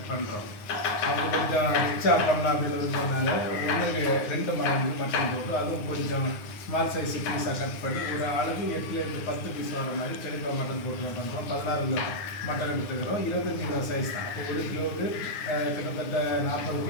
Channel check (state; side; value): late; right; 9.7 ms